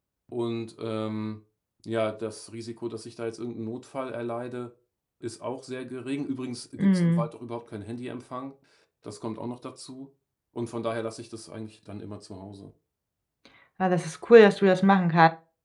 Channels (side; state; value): both; identical; correlation 1.00